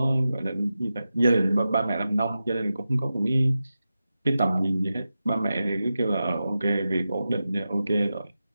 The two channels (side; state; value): both; inverted; correlation -0.92